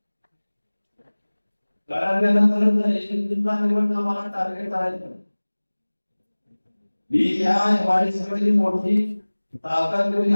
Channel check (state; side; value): inverted; both; correlation -1.00